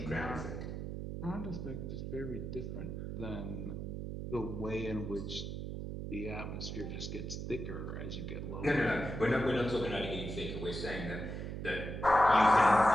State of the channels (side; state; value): right; noise; hum, 5 dB below the sound